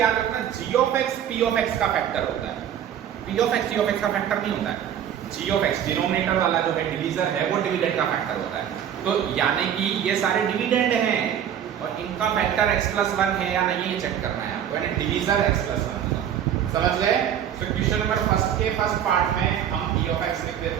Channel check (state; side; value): quieter; left; 9.5 dB